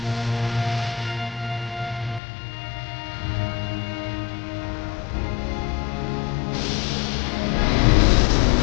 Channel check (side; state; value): right; drops out; at 2.2 s